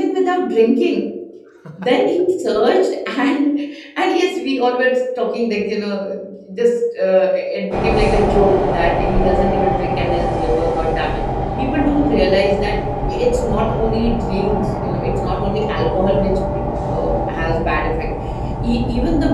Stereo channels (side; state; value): both; identical; correlation 1.00